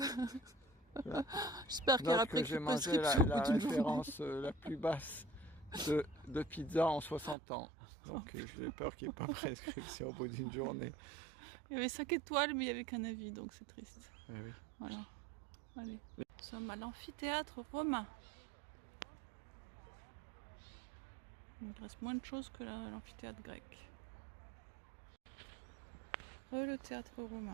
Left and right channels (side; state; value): left; drops out; at 7.4 s